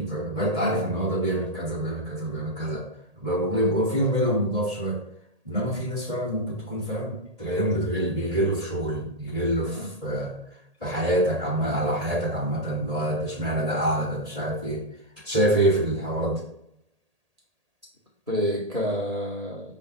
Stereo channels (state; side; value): late; left; 1.8 ms